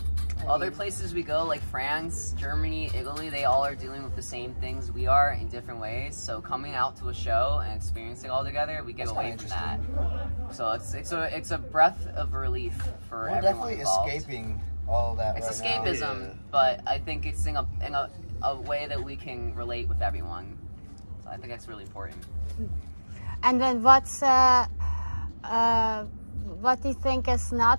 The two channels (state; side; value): inverted; both; correlation -1.00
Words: Other places we go, like France, Germany, Italy, they all are dealing with the same things we are in different ways. So coming out to a show and experiencing it all together, we get That's away kinda from that. So it's a breath of relief for We're everyone definitely involved. escaping all of that It's right now. escapism, but I think it's in a way that we can relate with everyone. So I think that's really important. And then what do you think is not?